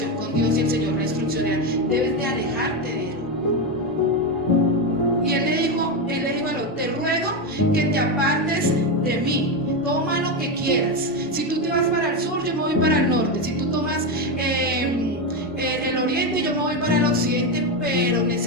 con Dios y el Señor le instruccionó: debes de alejarte de él. Y él le dijo a Lot: te ruego que te apartes de mí, toma lo que quieras. Si tú te vas para el sur, yo me voy para el norte. Si tú tomas el oriente, yo me voy para el occidente, pero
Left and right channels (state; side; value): normal; both; correlation 0.11